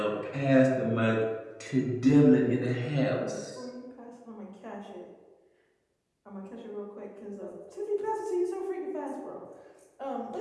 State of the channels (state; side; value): identical; both; correlation 1.00